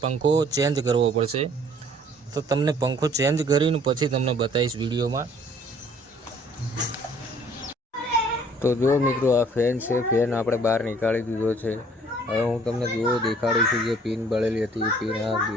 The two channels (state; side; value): normal; both; correlation 0.57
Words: પંખો ચેન્જ કરવો પડશે। તો તમને પંખો ચેન્જ કરીને પછી તમને બતાવીશ વિડીયોમાં। તો જો મિત્રો, આ ફેન છે, ફેન આપણે બહાર નીકાળી દીધો છે। હવે હું તમને દેખાડું છું, જે પિન બળેલી હતી એ પિન આ